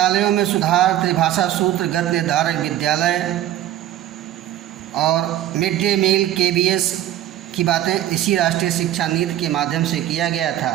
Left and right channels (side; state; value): left; quieter; 12.6 dB